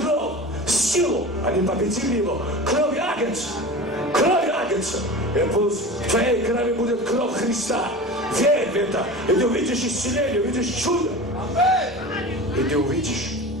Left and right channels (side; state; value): both; normal; correlation 0.33